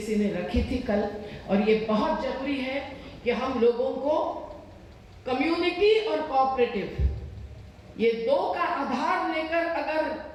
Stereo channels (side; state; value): both; identical; correlation 1.00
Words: ने रखी थी कल, और ये बहुत जरूरी है कि हम लोगों को कम्युनिटी और कोऑपरेटिव, ये दो का आधार लेकर अगर